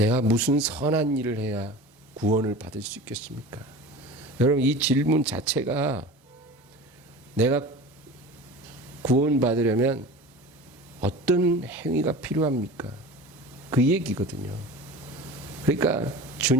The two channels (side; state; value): both; normal; correlation 0.35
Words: 무슨 선한 일을 해야 구원을 받을 수 있겠습니까? 여러분, 이 질문 자체가 내가 구원받으려면 어떤 행위가 필요합니까? 그 얘기거든요. 그러니까